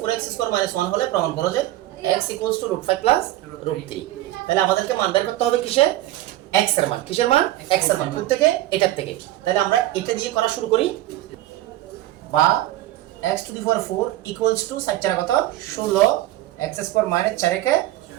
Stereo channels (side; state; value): left; quieter; 15.3 dB